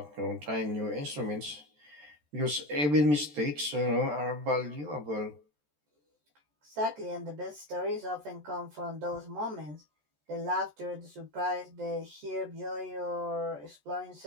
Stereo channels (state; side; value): late; left; 14 ms